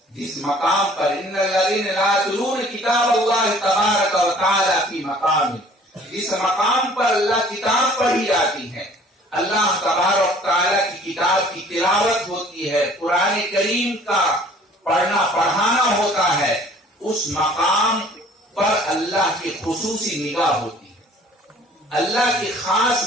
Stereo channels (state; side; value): normal; both; correlation 0.53